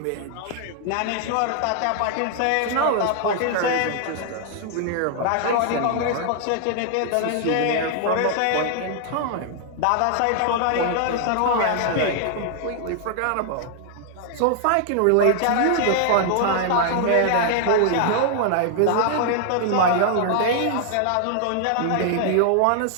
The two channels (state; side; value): different; both; correlation 0.00